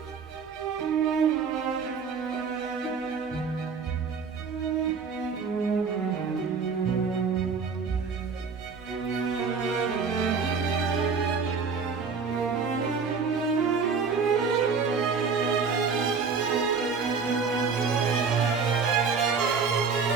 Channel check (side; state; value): left; quieter; 5.4 dB